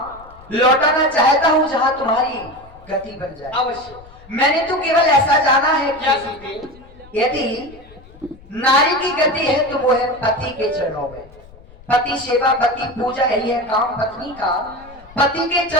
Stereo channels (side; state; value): left; noise; rumble, 23 dB below the sound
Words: लौटाना चाहता हूं जहां तुम्हारी गति बन जाए। अवश्य। मैंने तो केवल ऐसा जाना है क्या कि सीते? यदि नारी की गति है तो वो है पति के चरणों में। पति सेवा, पति पूजा, यही है काम पत्नी का। पति के